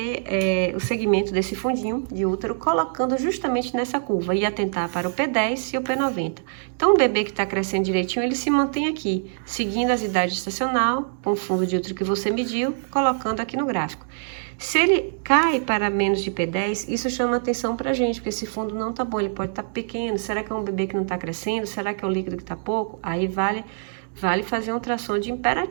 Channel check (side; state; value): left; silent; digital silence